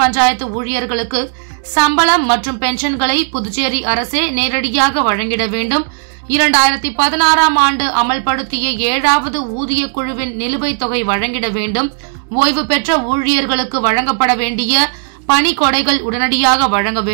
பஞ்சாயத்து ஊழியர்களுக்கு சம்பளம் மற்றும் பென்ஷன்களை புதுச்சேரி அரசே நேரடியாக வழங்கிட வேண்டும். 2016ஆம் ஆண்டு அமல்படுத்திய 7வது ஊதிய குழுவின் நிலுவைத் தொகை வழங்கிட வேண்டும். ஓய்வு பெற்ற ஊழியர்களுக்கு வழங்கப்பட வேண்டிய பணி கொடைகள் உடனடியாக வழங்க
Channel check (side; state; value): left; silent; digital silence